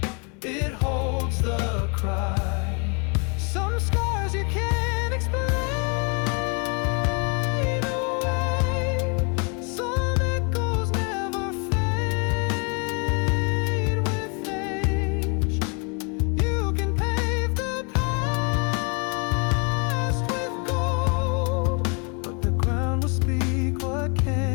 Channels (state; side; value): quieter; right; 35.3 dB